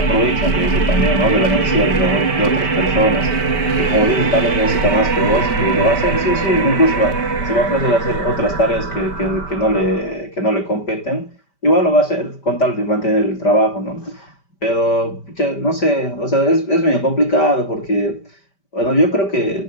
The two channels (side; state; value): right; late; 5.1 ms